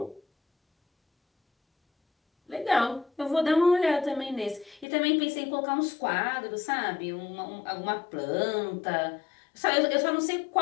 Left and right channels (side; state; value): right; drops out; at 4.9 s